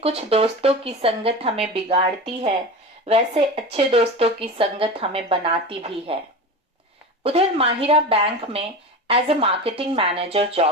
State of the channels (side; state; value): both; normal; correlation 0.28